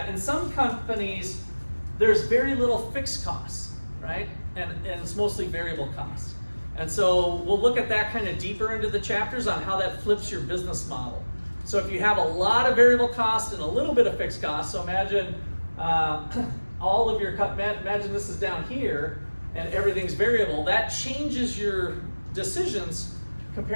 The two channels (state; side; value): inverted; both; correlation -1.00